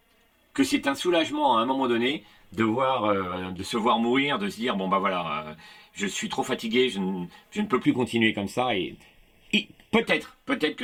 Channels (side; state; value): both; identical; correlation 1.00